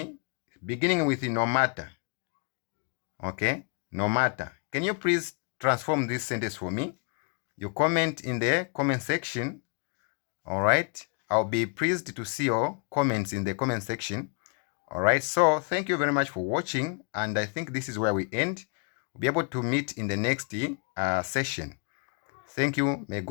beginning with no matter. Okay, no matter. Can you please transform this sentence for me? You comment in the comment section. All right, I'll be pleased to see your comments in the comment section. All right, so thank you very much for watching, and I think this is where we end. We'll be able to meet in the next session. Thank you. May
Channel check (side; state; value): right; quieter; 36.0 dB